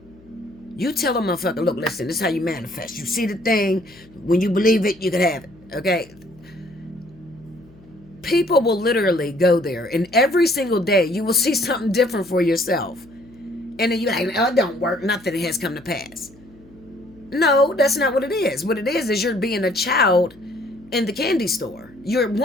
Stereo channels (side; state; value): left; noise; hum, 25 dB below the sound